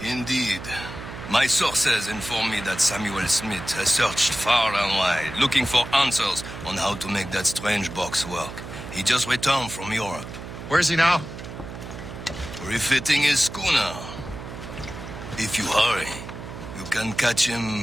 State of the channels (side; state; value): right; noise; hum, 11 dB below the sound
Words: Indeed. My sources inform me that Samuel Smith has searched far and wide, looking for answers on how to make that strange box work. He just returned from Europe. Where's he now? Refitting his schooner. If you hurry, you can catch